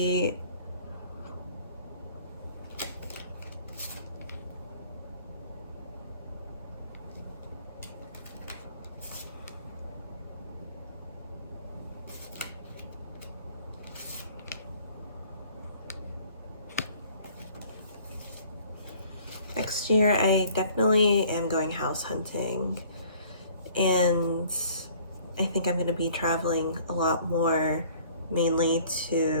Next year, I definitely am going house hunting, and I think I'm going to be traveling a lot more, mainly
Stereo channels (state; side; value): inverted; both; correlation -0.54